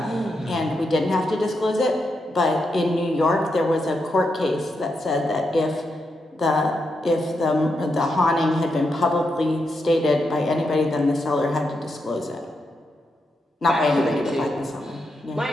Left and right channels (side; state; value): both; normal; correlation 0.84